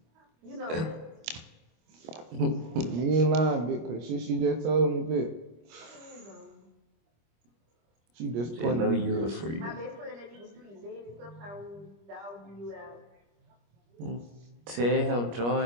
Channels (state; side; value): late; left; 25 ms